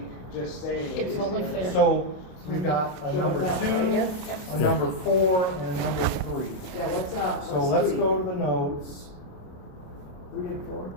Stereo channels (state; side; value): late; right; 27 ms